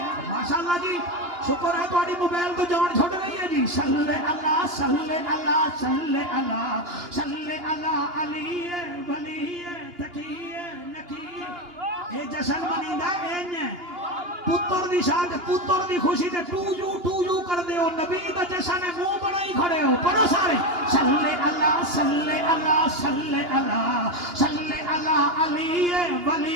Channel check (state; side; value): late; left; 2.9 ms